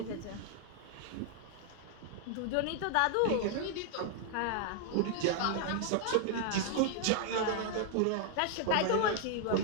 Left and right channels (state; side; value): different; both; correlation 0.00